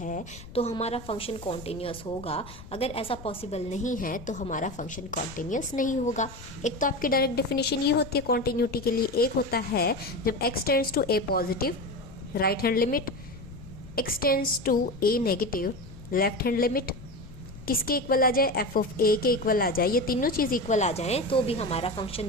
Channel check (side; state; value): left; noise; rumble, 16 dB below the sound